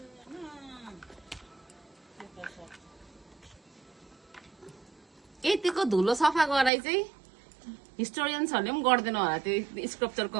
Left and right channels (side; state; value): left; drops out; at 6.7 s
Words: यतिको धुलो सफा गराइ चाहिँ हिस्टोरियन्सहरूले पनि गर्दैन होला त्यो